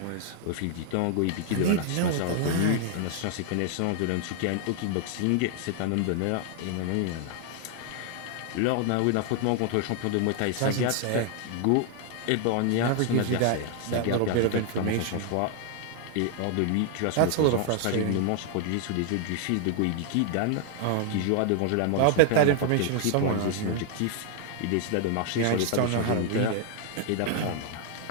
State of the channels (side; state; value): both; different; correlation 0.00